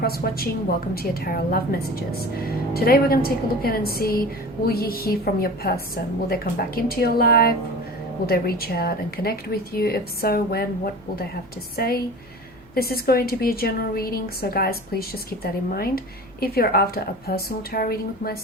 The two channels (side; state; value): left; noise; hum, 27 dB below the sound